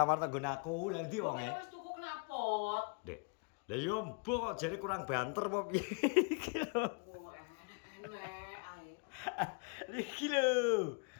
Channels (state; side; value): quieter; right; 34.6 dB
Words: nggon aku. Lah ndi wonge? Wis tuku knalpot. Dek. Lah yo mbok kok jare kurang banter apa piye iki lho. Oh, enek ae. Iki lho.